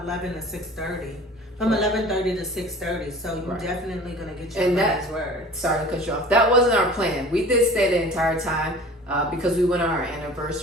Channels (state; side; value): normal; both; correlation 0.43